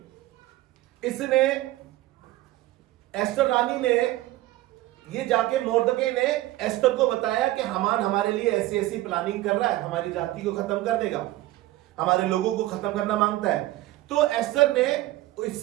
इसने, एस्टर रानी ने, ये जाके मोर्दके ने एस्टर को बताया कि हामान हमारे लिए ऐसी ऐसी प्लानिंग कर रहा है, हमारी जाति को खत्म कर देगा, हमारे लोगों को खत्म करना मांगता है। तो एस्टर ने,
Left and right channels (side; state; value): left; quieter; 16.7 dB